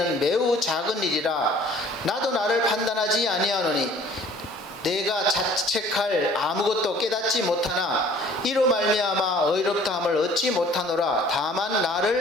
매우 작은 일이라 나도 나를 판단하지 아니하노니 내가 자책할 아무것도 깨닫지 못하나 이로 말미암아 의롭다함을 얻지 못하노라. 다만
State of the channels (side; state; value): both; normal; correlation 0.53